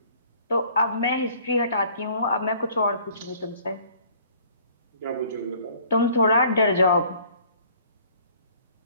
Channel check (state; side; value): inverted; both; correlation -0.55